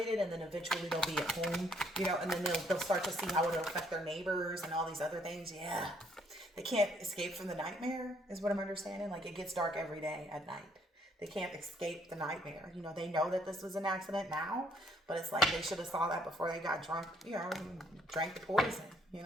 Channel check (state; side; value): normal; both; correlation 0.67